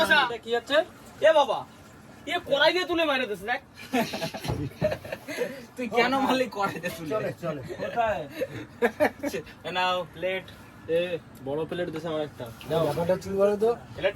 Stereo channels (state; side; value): identical; both; correlation 1.00